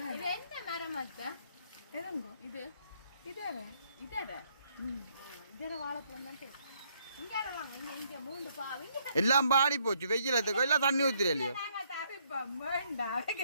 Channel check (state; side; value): inverted; both; correlation -0.70